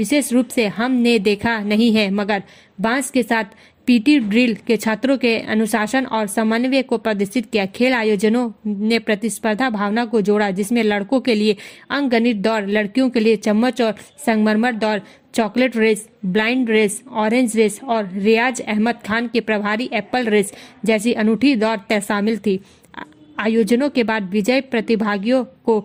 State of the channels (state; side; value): identical; both; correlation 1.00